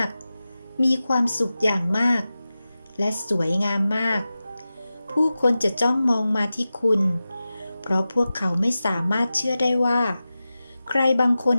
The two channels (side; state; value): both; inverted; correlation -0.94